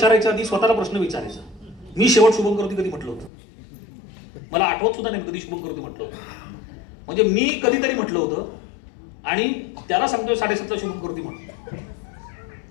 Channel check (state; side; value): drops out; right; at 3.3 s